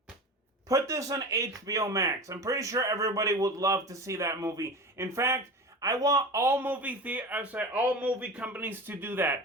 Put this on HBO Max. I'm pretty sure everybody would love to see that movie. In fact, I want all movie companies to do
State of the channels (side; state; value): both; normal; correlation 0.31